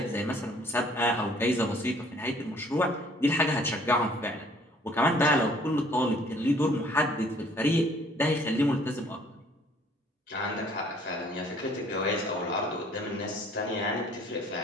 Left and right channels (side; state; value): both; normal; correlation 0.57